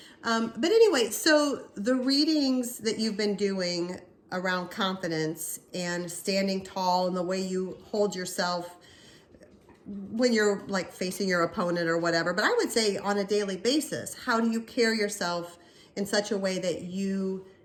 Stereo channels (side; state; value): both; identical; correlation 1.00